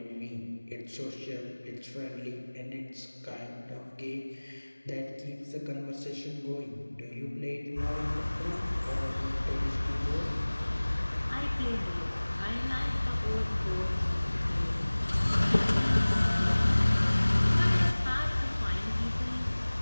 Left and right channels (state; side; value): inverted; both; correlation -1.00